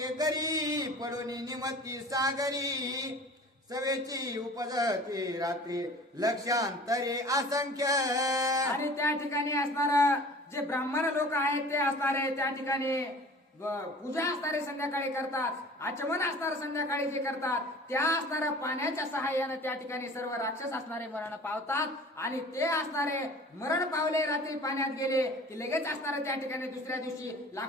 पडोनी निमती सागरी सवेची उपजती रात्री लक्षांतरे असंख्य. आणि त्या ठिकाणी असणार जे ब्राह्मण लोक आहेत ते असणारे त्या ठिकाणी पूजा असणारे संध्याकाळी करतात. आचमन असणारे संध्याकाळी जे करतात त्या असणाऱ्या पाण्याच्या सहाय्याने त्या ठिकाणी सर्व राक्षस असणारे मरण पावतात आणि ते असणारे मरण पावले रात्री पाण्यात गेले की लगेच असणारे त्या ठिकाणी दुसऱ्या दिवशी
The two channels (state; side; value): normal; both; correlation 0.44